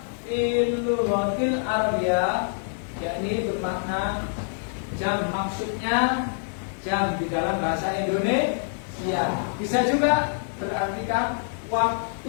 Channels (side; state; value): right; silent; digital silence